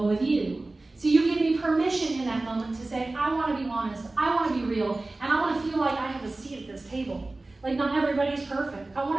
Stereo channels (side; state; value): left; quieter; 3.1 dB